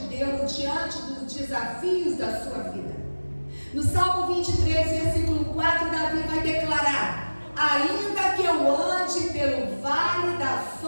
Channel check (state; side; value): inverted; both; correlation -1.00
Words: Deus diante dos desafios da sua vida. No Salmo 23, versículo 4, Davi vai declarar: ainda que eu ande pelo vale da